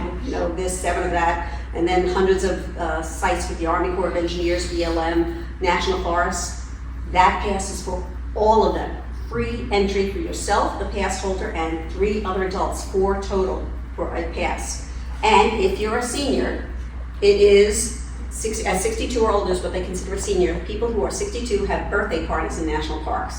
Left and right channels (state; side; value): identical; both; correlation 1.00